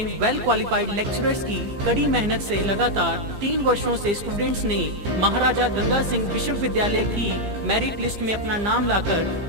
वेल क्वालिफाइड लेक्चरर्स की कड़ी मेहनत से लगातार 3 वर्षों से स्टूडेंट्स ने महाराजा गंगा सिंह विश्वविद्यालय की मेरिट लिस्ट में अपना नाम लाकर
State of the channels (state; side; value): late; left; 15 ms